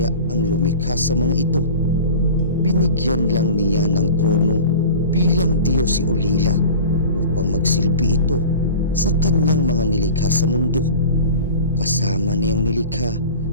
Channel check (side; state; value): both; inverted; correlation -0.37